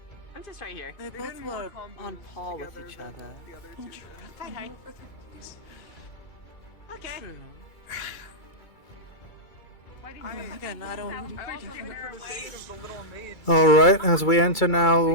I'm just right here. They They both did more were combos on par with together each than other. The other two did. Hi. okay. True. Again, I don't. I also think for the sake of the little mage, Alright, as we enter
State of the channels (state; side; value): late; right; 2.3 ms